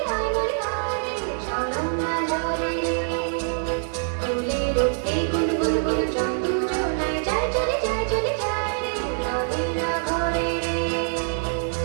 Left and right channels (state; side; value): silent; left; 62 dB below the other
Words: হাই মরি হাই রে ঝরম না ঝরে রে ফুলের উঠতে গুল গুল গুল চন্দু জোনায় যায় চলে যায় রে রহে না ঘরে রে